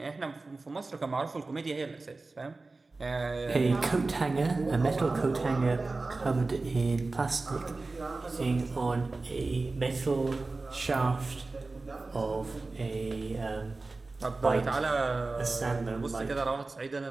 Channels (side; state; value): left; quieter; 3.5 dB